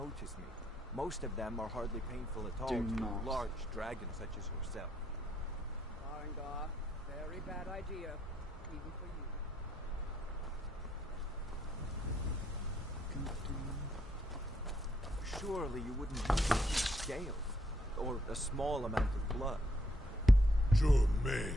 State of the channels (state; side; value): normal; both; correlation 0.74